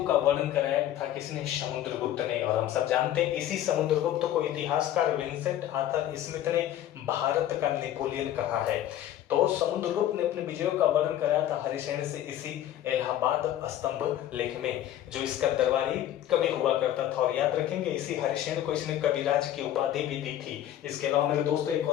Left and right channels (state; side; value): quieter; right; 12.0 dB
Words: का वर्णन कराया था किसने? समुद्रगुप्त ने। और हम सब जानते हैं इसी समुद्रगुप्त को इतिहासकार विंसेंट आर्थर स्मिथ ने भारत का नेपोलियन कहा है। तो समुद्रगुप्त ने अपने विजयों का वर्णन कराया था हरिसेन से इसी इलाहाबाद स्तंभ लेख में, जो इसका दरबारी कवि हुआ करता था। और याद रखेंगे इसी हरिसेन को इसने कविराज की उपाधि भी दी थी। इसके अलावा मेरे दोस्तों एक